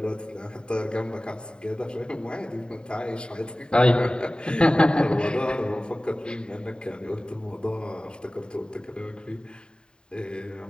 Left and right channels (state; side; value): late; right; 0.049 ms